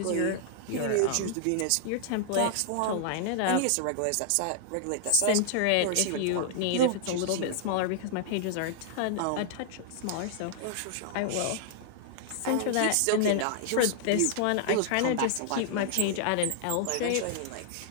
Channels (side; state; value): both; different; correlation -0.01